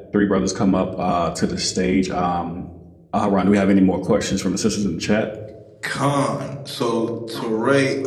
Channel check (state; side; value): identical; both; correlation 1.00